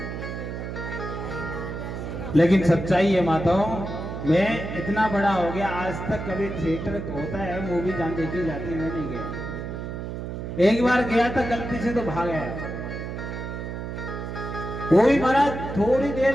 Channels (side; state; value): right; noise; hum, 6 dB below the sound